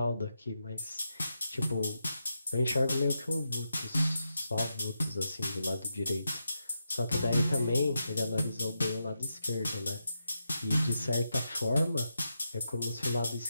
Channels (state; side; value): inverted; both; correlation -0.86